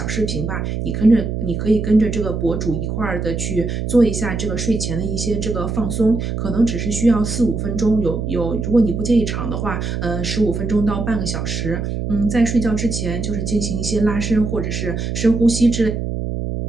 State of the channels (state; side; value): noise; right; hum, 3 dB below the sound